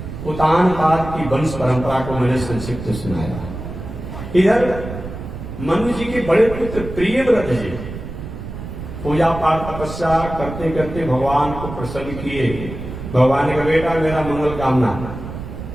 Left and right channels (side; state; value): right; noise; rumble, 9 dB below the sound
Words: उतानपाद की वंश परंपरा को मैंने संक्षिप्त सुनाया। इधर मनु जी के बड़े पुत्र प्रियव्रत जी पूजा पाठ तपस्या करते करते भगवान को प्रसन्न किए। भगवान ने कहा, बेटा मेरा मंगल कामना,